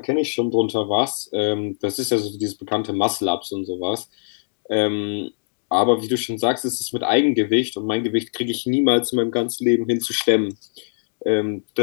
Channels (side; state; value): right; silent; digital silence